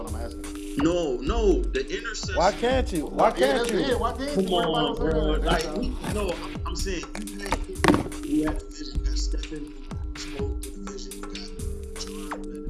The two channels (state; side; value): identical; both; correlation 1.00